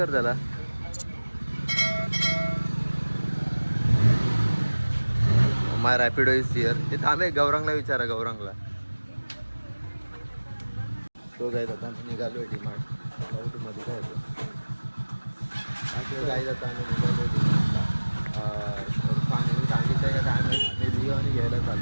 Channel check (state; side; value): inverted; both; correlation -1.00